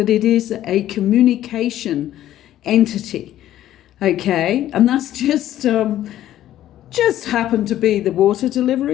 it is a communication entity. Okay, and that's just happened to be the water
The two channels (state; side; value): quieter; right; 12.8 dB